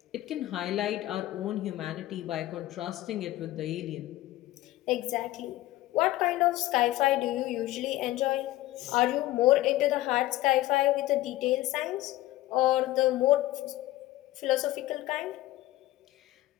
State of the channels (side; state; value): right; quieter; 16.2 dB